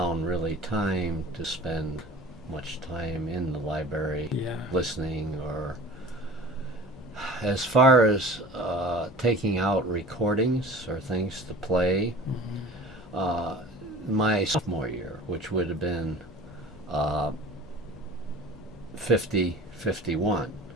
really time to spend much time in the library listening or As far as taking out recordings or things to play, uh, my sophomore year, which would have been uh, 50, 51,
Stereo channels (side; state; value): both; normal; correlation 0.42